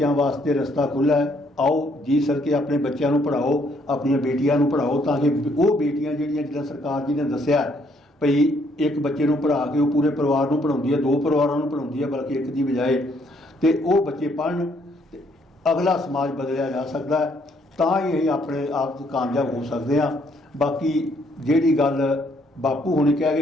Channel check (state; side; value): normal; both; correlation 0.68